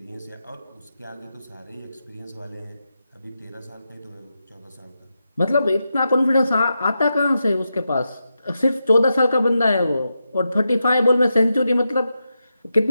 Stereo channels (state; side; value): inverted; both; correlation -0.88